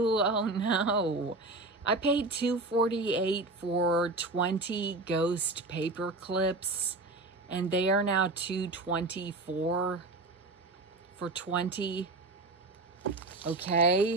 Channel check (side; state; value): left; quieter; 3.1 dB